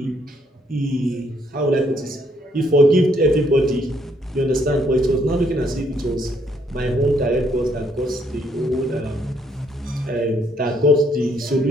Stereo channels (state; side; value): normal; both; correlation 0.70